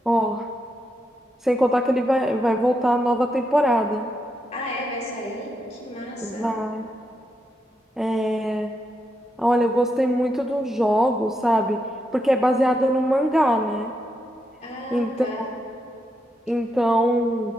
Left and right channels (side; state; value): both; normal; correlation 0.82